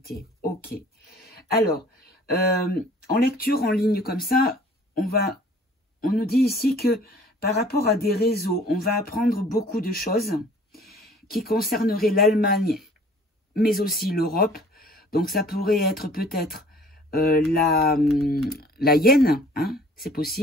Ok. Alors, en lecture en ligne comme ça, on nous dit ici que par rapport à des réseaux, on va apprendre beaucoup de choses qui concerneraient l'Allemagne, mais aussi l'Europe. Donc, ça pourrait être peut-être la hyène, hein, c'est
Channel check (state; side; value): normal; both; correlation 0.52